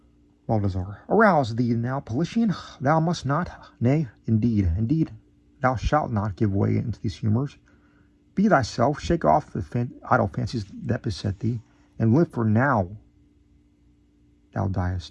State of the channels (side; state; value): both; identical; correlation 1.00